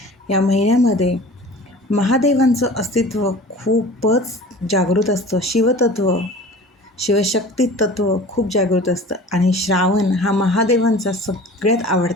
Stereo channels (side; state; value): both; normal; correlation 0.41